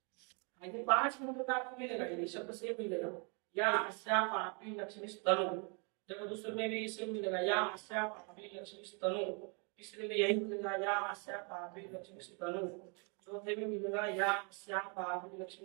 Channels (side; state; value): left; quieter; 35.9 dB